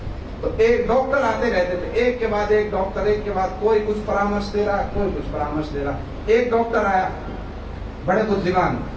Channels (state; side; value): identical; both; correlation 1.00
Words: तो एक डॉक्टर आते रहते थे, एक के बाद एक डॉक्टर, एक के बाद कोई कुछ परामर्श दे रहा, कोई कुछ परामर्श दे रहा। एक डॉक्टर आया, बड़े बुद्धिमान,